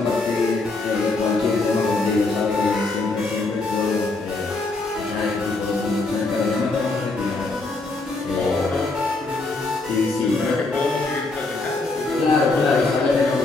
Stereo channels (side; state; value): right; quieter; 3.4 dB